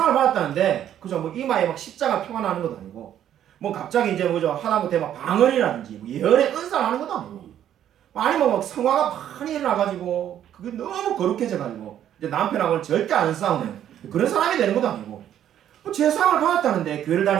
받았다는데 그죠, 뭐 이마에 막 십자가 표가 나는 것도 아니고, 뭐 갑자기 이제 뭐죠, 하다못해 막 방언이라든지 뭐 예언의 은사를 하는 것도 아니고, 아니면 막 성화가 많이 일어나가지고 그게 너무 거룩해져가지고 이제 남편하고는 절대 안 싸우는 그런 사람이 되는 것도 아니고, 뭐 제사함을 받았다는데 교회를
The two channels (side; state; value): left; quieter; 10.7 dB